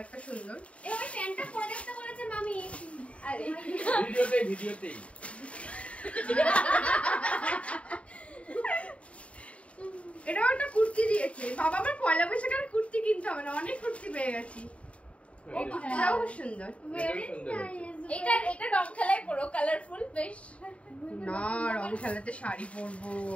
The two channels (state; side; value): late; right; 0.063 ms